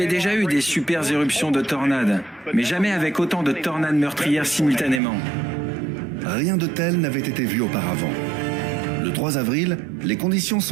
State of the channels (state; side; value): drops out; left; at 5.0 s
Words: déjà eu des super éruptions de tornades, mais jamais avec autant de tornades meurtrières simultanément. Rien de tel n'avait été vu auparavant. Le 3 avril, les conditions